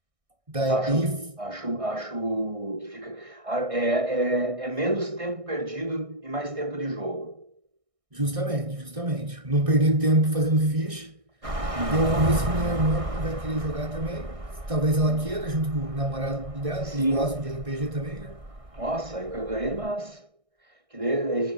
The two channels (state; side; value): late; left; 1.6 ms